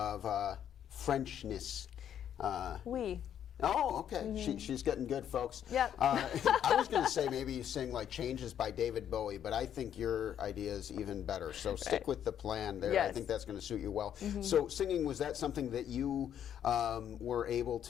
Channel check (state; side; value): quieter; right; 9.6 dB